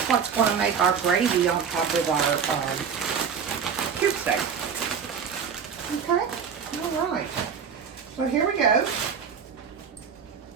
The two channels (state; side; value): quieter; left; 6.8 dB